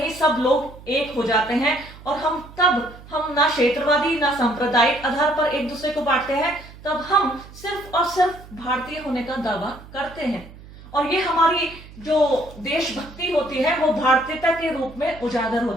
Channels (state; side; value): noise; right; hum, 19 dB below the sound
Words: सब लोग एक हो जाते हैं और हम ना क्षेत्रवादी ना सांप्रदायिक आधार पर एक दूसरे को बांटते हैं, तब हम सिर्फ और सिर्फ भारतीय होने का दावा करते हैं। और ये हमारी जो देशभक्ति होती है वो भारतीयता के रूप में उजागर